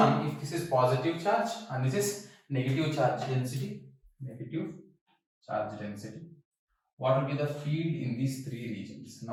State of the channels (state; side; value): identical; both; correlation 1.00